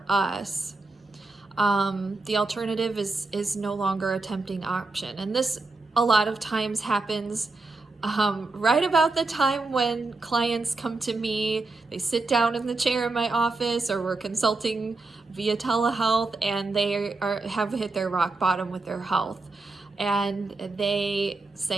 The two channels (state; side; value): quieter; left; 3.5 dB